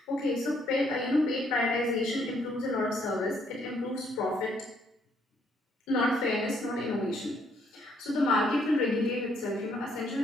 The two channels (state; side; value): normal; both; correlation 0.69